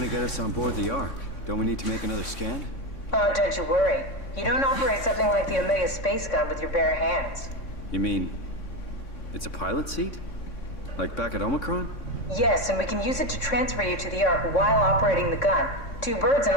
get us on board the Ark? Don't we need to make another scan? Oh, don't you worry. You don't operate something like the Omega space gun with your bare hands. You mean, it's a pilot seat? Like back at Omicron? Yes, and we can use it to transfer you to the Ark while operating the gun. 2 birds and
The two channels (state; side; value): late; right; 3.6 ms